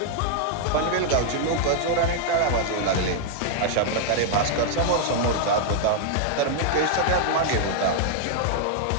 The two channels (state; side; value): different; both; correlation -0.01